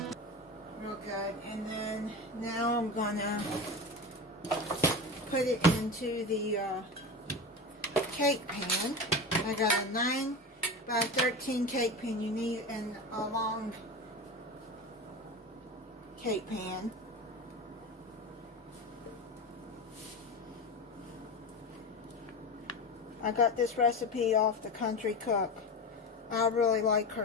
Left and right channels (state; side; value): normal; both; correlation 0.25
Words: real good, and then now I'm gonna put it into the cake pan. I got a 9 by 13 cake pan. You need a long cake pan. I got this recipe off the Country Cook. I really like